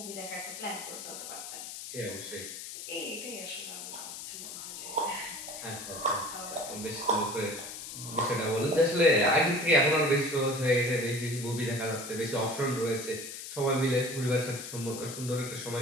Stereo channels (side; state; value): left; noise; hiss, 9 dB below the sound